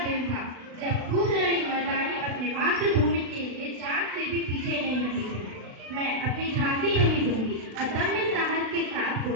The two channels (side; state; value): left; late; 36 ms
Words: दिन था जब खूबलड़ी मर्दानी अपने मातृभूमि के लिए जान से भी पीछे नहीं हटी थी। मैं अपनी झांसी नहीं दूंगी अदम्य साहस के साथ